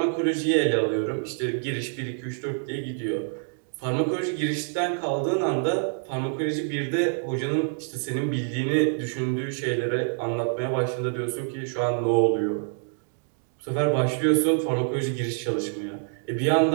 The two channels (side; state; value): left; silent; 61 dB below the other